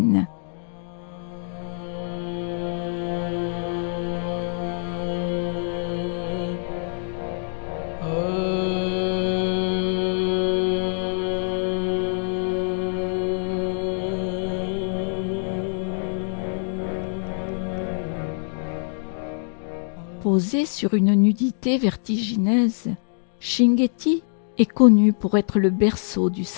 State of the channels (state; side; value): silent; right; digital silence